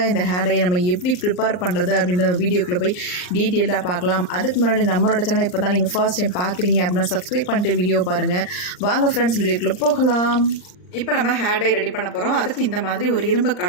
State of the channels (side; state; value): right; late; 39 ms